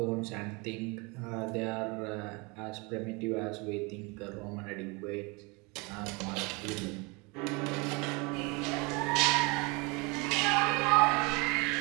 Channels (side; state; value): left; quieter; 28.3 dB